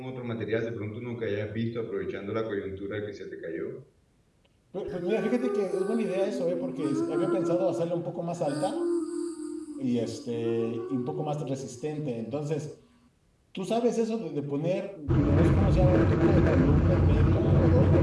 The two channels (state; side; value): identical; both; correlation 1.00